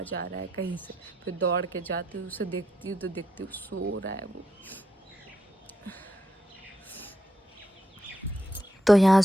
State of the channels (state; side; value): normal; both; correlation 0.80